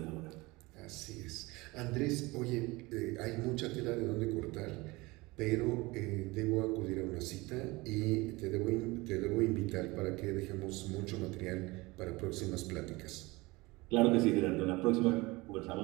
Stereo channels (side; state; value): left; quieter; 22.6 dB